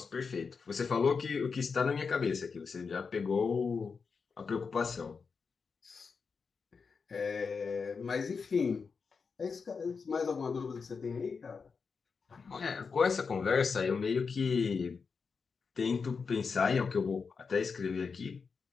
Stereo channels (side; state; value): right; quieter; 5.3 dB